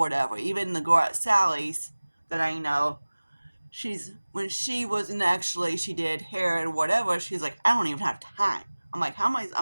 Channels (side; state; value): both; inverted; correlation -1.00